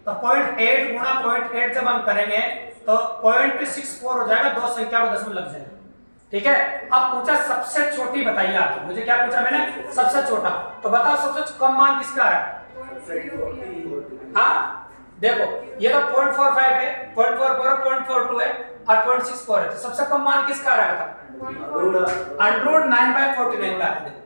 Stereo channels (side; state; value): both; inverted; correlation -1.00